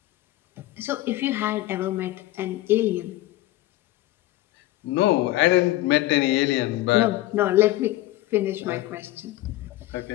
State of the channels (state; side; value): quieter; right; 16.6 dB